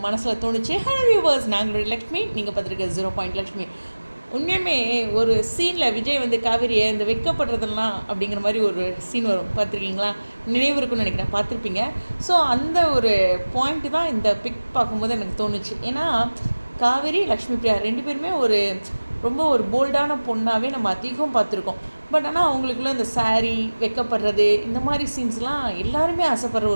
மனசில் தோணுச்சு. ஹலோ வியூவர்ஸ், நாங்களுடைய லக்ஷ்மி, நீங்கள் பார்த்துருக்க 0 லக்ஷ்மி. உண்மையுமே ஒரு சீனில் விஜய் வந்து காவேரியை இந்த வைக்கப்படுறதெல்லாம் அப்படிங்கிற மாதிரி ஒரு சீன் வரும், பார்த்துருக்கீங்களா? நினைவு இருக்குன்னு நினைக்கிறேன், பார்த்துருப்பீங்க. ஸோ அந்த ஒரு பாயிண்ட்டு தான் இந்த பிக் பார்க்கும்போது எனக்கு தோணுச்சு. ஏன்னா காவேரி, லக்ஷ்மி பிரியா ரெண்டு பேருமே ரொம்ப ஒரு போல்டான பொண்ணாகவே நம்ம அதிகம் பார்த்துருக்கோம். பட் ஆனால் அவங்களுக்குள்ள இந்த சாரீ வைக்கப்படுறது இந்த மாதிரி சீன்ஸ்லாம் எல்லாருமே ஆசைப்படுற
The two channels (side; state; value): both; inverted; correlation -1.00